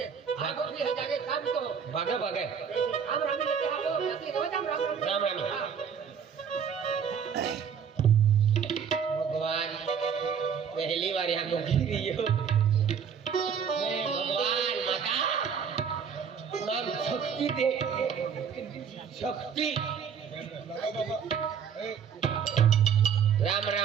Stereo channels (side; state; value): left; quieter; 7.2 dB